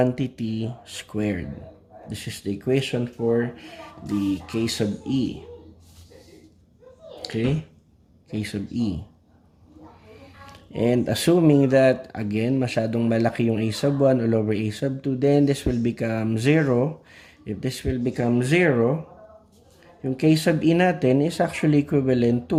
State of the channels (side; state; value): both; identical; correlation 1.00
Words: squared. This is the equation for the K sub E. Okay, K sub E. And assuming that, again, masyadong malaki yung A sub 1 all over A sub 2, then this will become 0. If this will become 0, yung K sub E natin is actually equivalent